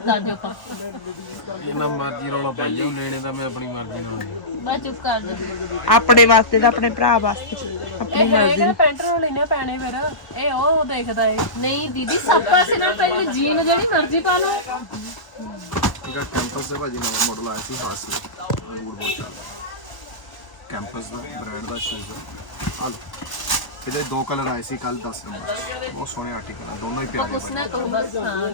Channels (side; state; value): right; late; 1.0 ms